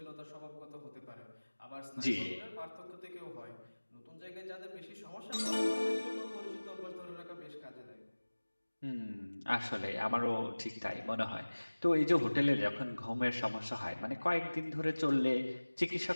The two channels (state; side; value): inverted; both; correlation -1.00